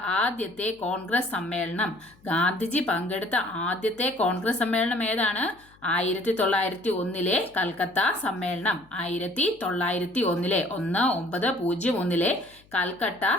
ആദ്യത്തെ കോൺഗ്രസ് സമ്മേളനം. ഗാന്ധിജി പങ്കെടുത്ത ആദ്യത്തെ കോൺഗ്രസ് സമ്മേളനം ഏതാണ്? 1901 കൽക്കത്ത സമ്മേളനം. 1901 1901 കൽക്കട്ട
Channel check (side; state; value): left; noise; hum, 29 dB below the sound